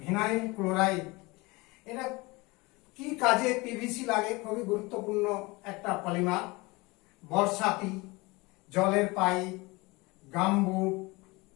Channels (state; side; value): quieter; right; 24.1 dB